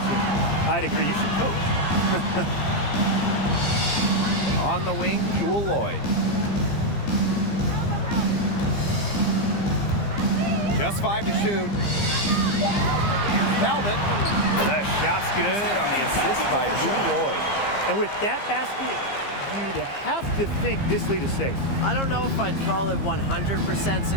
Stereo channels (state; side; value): late; right; 15 ms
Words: I'd agree. You should coach. On the wing, Jewel Lloyd. Just 5 to shoot. Here's Talbot. The shot's good on the assist by Jewel Lloyd. And with that basket, you'd have to think this lead is safe. I don't know if I'd call it 100%